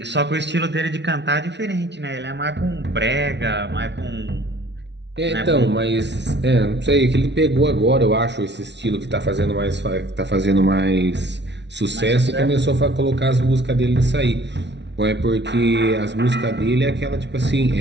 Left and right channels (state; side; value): late; left; 0.51 ms